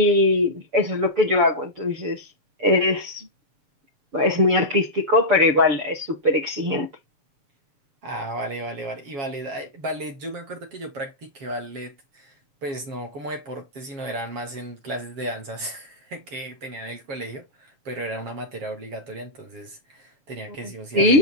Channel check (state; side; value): late; left; 7.3 ms